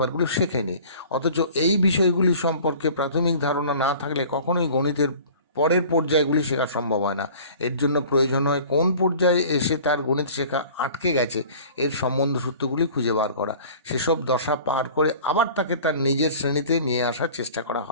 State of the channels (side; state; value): both; inverted; correlation -0.45